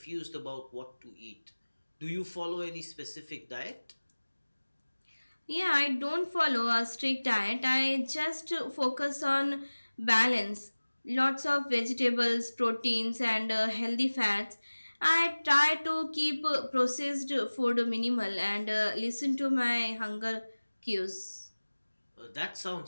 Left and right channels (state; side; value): inverted; both; correlation -1.00